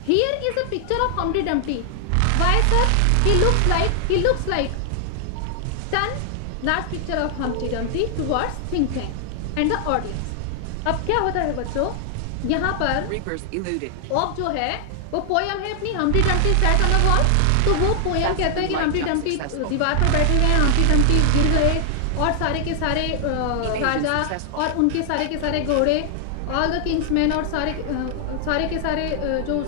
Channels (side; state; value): both; different; correlation 0.00